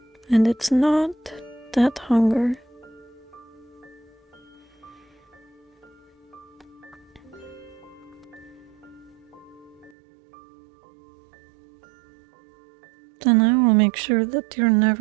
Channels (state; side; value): drops out; left; at 9.9 s